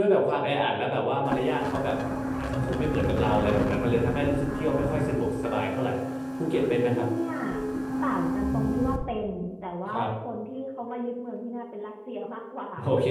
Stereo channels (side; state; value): both; identical; correlation 1.00